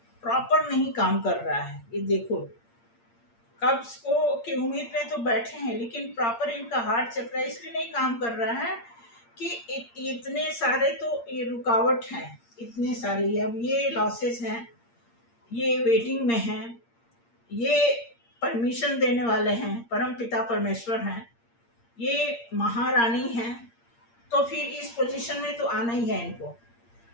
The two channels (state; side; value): late; right; 8.6 ms